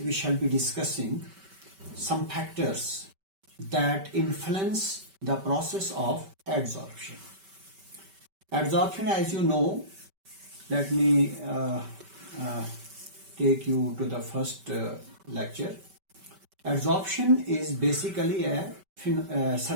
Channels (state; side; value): late; left; 5.2 ms